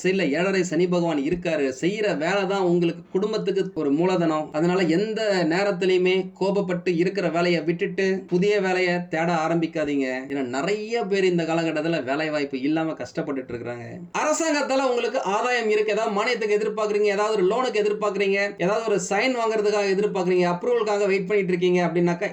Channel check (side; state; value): both; identical; correlation 1.00